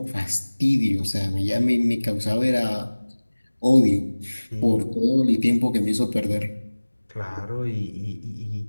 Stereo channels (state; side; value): inverted; both; correlation -1.00